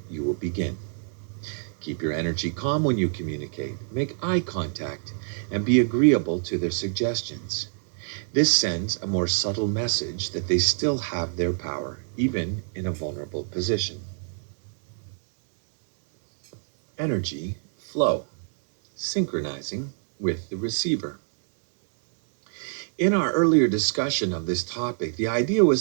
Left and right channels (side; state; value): left; silent; digital silence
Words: you will begin. Keep your energy calm when you communicate. Make eye contact and be agreeable to their suggestions. This sends a more subtle message that they still have their power, even in a vulnerable position. Energy flow, synchronizing with the receiver. In our earlier discussion of this topic, the idea